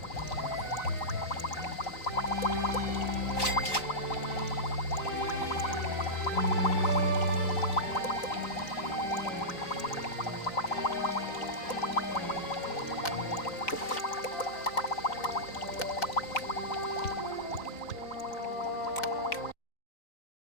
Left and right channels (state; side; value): late; right; 3.9 ms